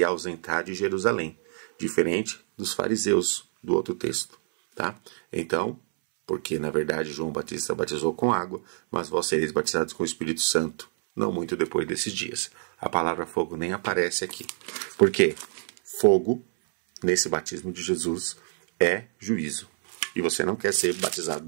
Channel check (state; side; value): silent; left; 60 dB below the other